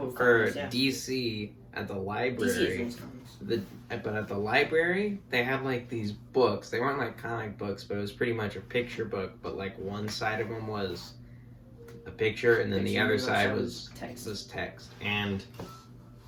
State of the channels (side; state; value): both; identical; correlation 1.00